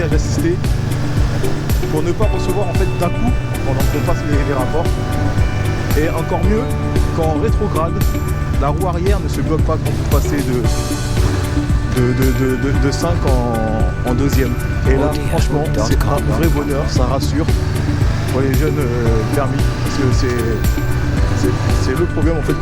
assisté pour ne pas recevoir en fait d'un coup pendant qu'on passe les rapports. Et encore mieux, quand en rétrograde, la roue arrière ne se bloque pas quand vous passez de 5 en deuxième. Et là, franchement, c'est un vrai bonheur, ça rassure pour les jeunes permis, parce que c'est le problème en fait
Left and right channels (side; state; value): both; identical; correlation 1.00